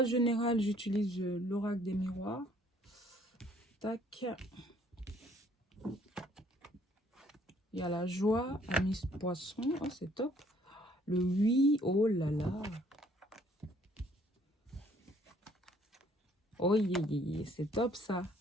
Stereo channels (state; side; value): normal; both; correlation 0.62